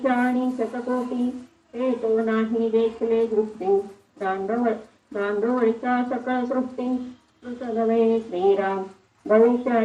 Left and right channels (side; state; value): both; identical; correlation 1.00